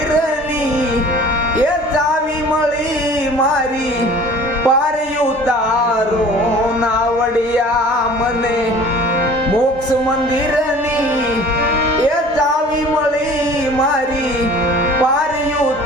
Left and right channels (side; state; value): both; normal; correlation 0.46